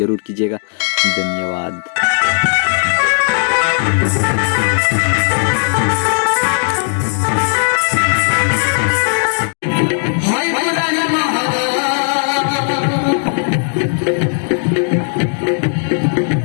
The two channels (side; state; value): right; silent; 59 dB below the other